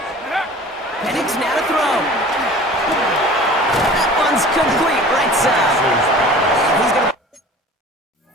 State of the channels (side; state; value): both; normal; correlation 0.43